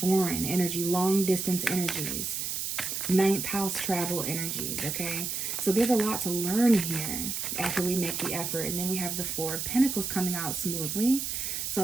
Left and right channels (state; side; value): noise; right; hiss, 3 dB below the sound